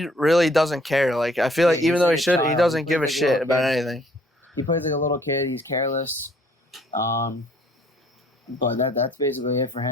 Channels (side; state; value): both; normal; correlation 0.61